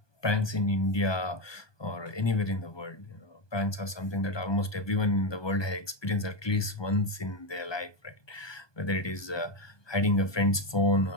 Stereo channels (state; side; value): late; right; 1.2 ms